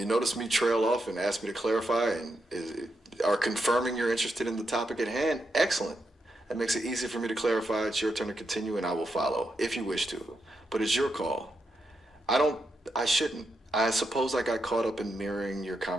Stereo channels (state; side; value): normal; both; correlation 0.84